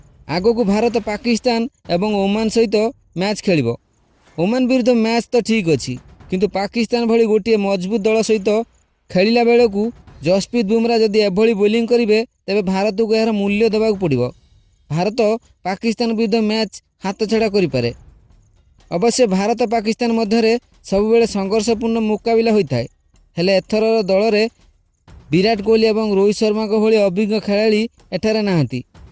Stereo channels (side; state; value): both; identical; correlation 1.00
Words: आगो को भारत पाकिस्तान एवं ओमान सहित मैच खेलिबो। ओमान विरुद्ध मैच तो ठीक अछि, किंतु पाकिस्तान भली गोटे मजबूत दल सहित खेलिला बेले को जसप्रीत बुमरा जदि एभली बोलिंग करिवे तेबे भारत को यार मूल्य देबाक पड़िबो। भारत पाकिस्तान विरुद्ध मैच हाथ छड़ा करि पारे। अवश्य भारत पाकिस्तान मध्य सब बेले संघर्षपूर्ण मुकाबला होता है, हेले एथर दल रे विराट कोहली एवं रोहित शर्मा को भली अभिज्ञ खेलाड़ी एठारे नाहांती,